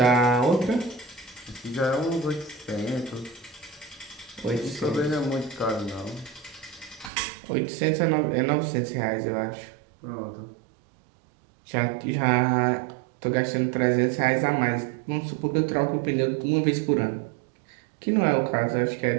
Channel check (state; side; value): drops out; left; at 7.1 s